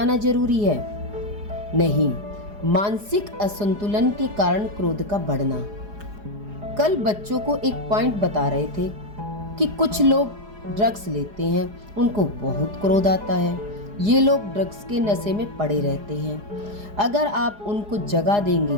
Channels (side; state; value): left; late; 4.8 ms